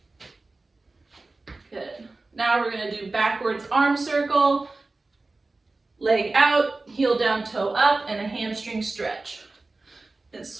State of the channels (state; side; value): quieter; left; 3.3 dB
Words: Good. Now we're going to do backwards arm circle, leg out, heel down, toe up, and a hamstring stretch. And